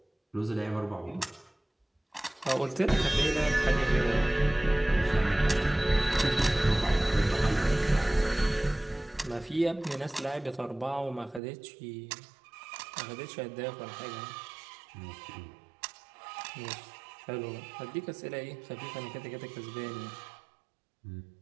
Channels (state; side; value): drops out; left; at 11.4 s